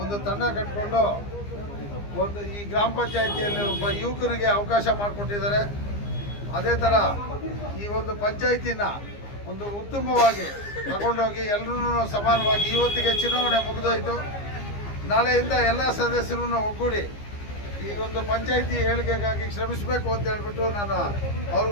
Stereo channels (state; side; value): late; right; 15 ms